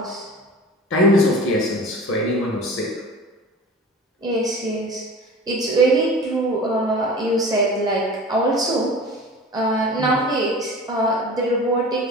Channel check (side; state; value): both; normal; correlation 0.38